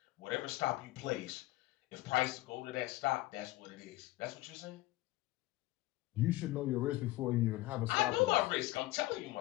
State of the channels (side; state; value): right; quieter; 18.0 dB